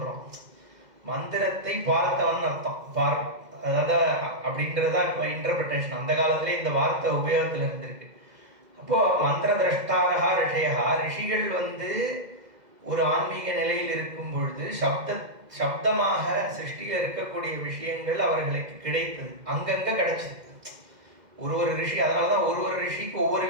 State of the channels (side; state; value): left; late; 2.0 ms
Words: மந்திரத்தை பார்த்தவன் அர்த்தம். அதாவது அப்படின்றதா இப்போ இன்டர்பிரிட்டேஷன். அந்த காலத்திலே இந்த வார்த்தை உபயோகத்தில் இருந்திருக்கு. அப்போ மந்திர திரஷ்டாரகா ரிஷயா, ரிஷிகள் வந்து ஒரு ஆன்மீக நிலையில் இருக்கும் பொழுது சப்தமாக சிருஷ்டியில் இருக்கக்கூடிய விஷயங்கள் அவர்களுக்கு கிடைத்தது, அங்கங்க கிடைச்சது. ஒரு ரிஷி, அதனாலதான் ஒரு ரிஷிக்கு ஒவ்வொரு